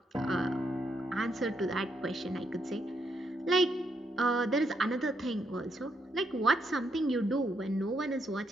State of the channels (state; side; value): normal; both; correlation 0.77